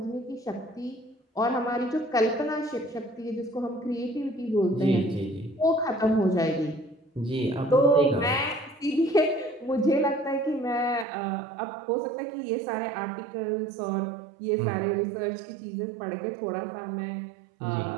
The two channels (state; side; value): drops out; left; at 11.1 s